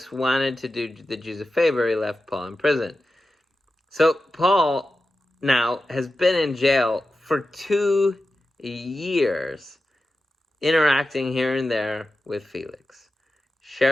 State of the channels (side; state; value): both; normal; correlation 0.92